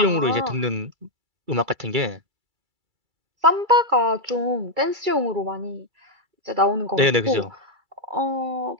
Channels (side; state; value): left; late; 2.3 ms